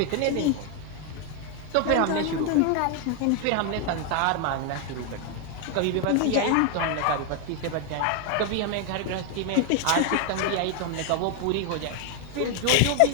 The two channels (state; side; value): different; both; correlation 0.01